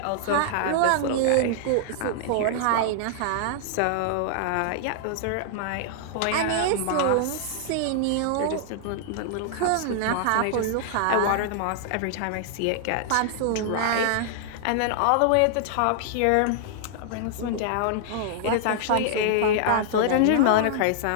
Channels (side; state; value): both; different; correlation -0.01